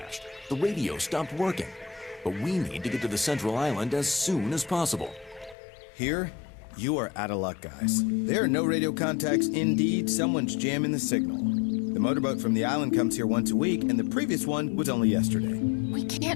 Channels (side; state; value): right; drops out; at 5.6 s